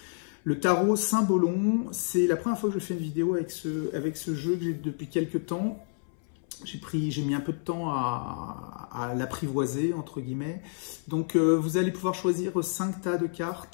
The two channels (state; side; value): silent; right; 59 dB below the other